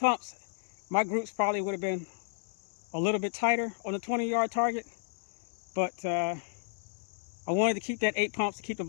my groups probably would have been a little bit tighter on the 20-yard target. But I wanted to keep that 8 pumps to keep the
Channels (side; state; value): right; silent; digital silence